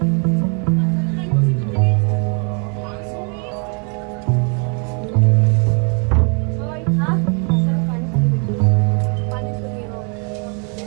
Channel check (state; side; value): quieter; left; 38.2 dB